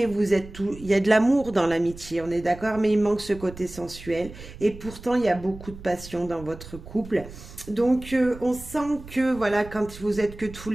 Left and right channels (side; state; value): right; noise; rumble, 16 dB below the sound